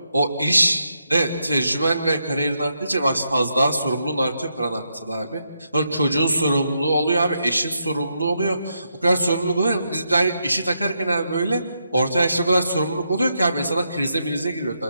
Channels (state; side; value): inverted; both; correlation -0.81